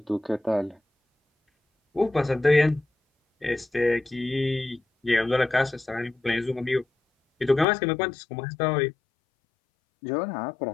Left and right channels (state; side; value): drops out; right; at 7.7 s